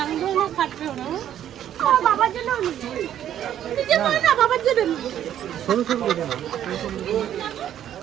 না কাটবেও না বাবার জন্য নিজে করে না বাবার জন্য সরু সরু দেখে না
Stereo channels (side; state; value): left; quieter; 10.8 dB